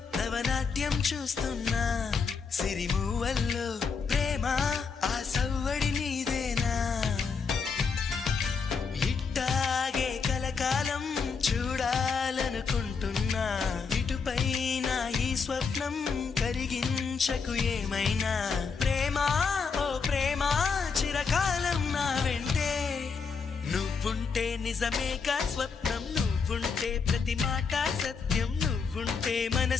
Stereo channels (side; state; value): right; quieter; 5.4 dB